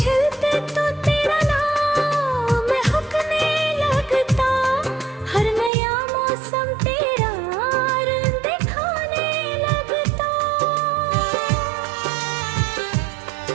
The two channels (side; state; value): left; drops out; at 5.7 s